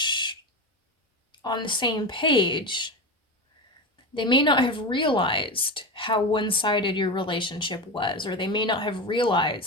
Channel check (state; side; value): normal; both; correlation 0.21